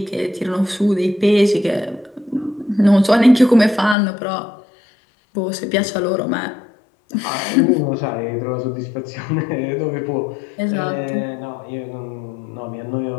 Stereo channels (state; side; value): drops out; right; at 4.0 s